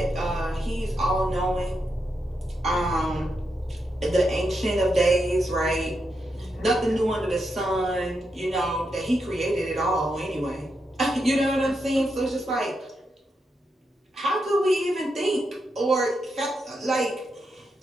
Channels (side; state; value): both; normal; correlation 0.84